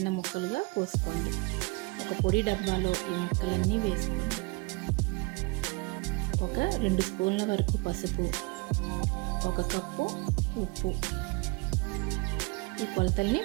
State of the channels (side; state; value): left; quieter; 27.3 dB